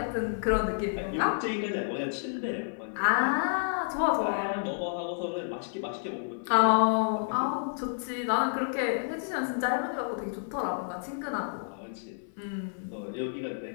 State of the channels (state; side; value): silent; right; 58 dB below the other